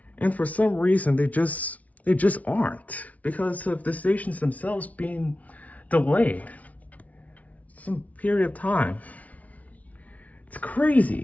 And for some reason, they just aren't, because of the stations themselves being delayed some period of time. It's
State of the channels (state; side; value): late; right; 0.069 ms